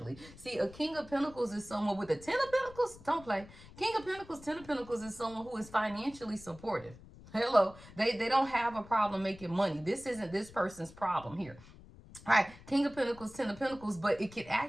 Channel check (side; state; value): left; noise; rumble, 20 dB below the sound